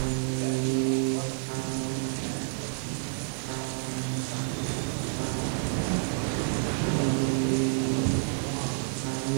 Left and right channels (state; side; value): silent; left; digital silence